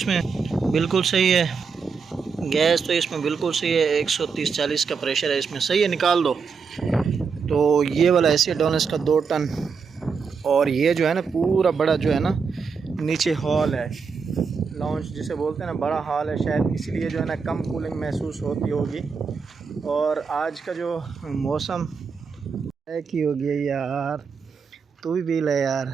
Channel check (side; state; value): left; quieter; 5.6 dB